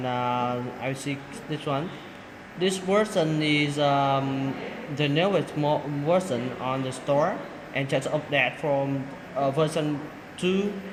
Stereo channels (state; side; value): identical; both; correlation 1.00